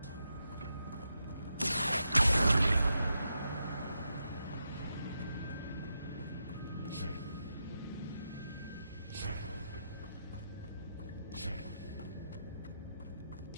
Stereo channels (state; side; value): inverted; both; correlation -0.85